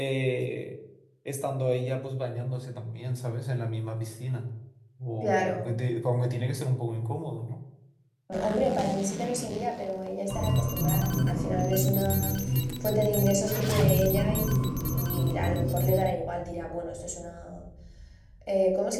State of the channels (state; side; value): identical; both; correlation 1.00